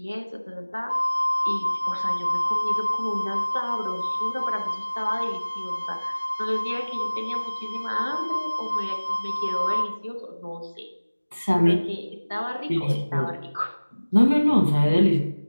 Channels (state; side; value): inverted; both; correlation -1.00